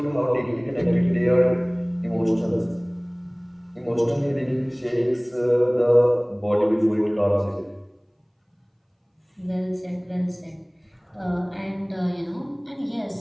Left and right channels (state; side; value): identical; both; correlation 1.00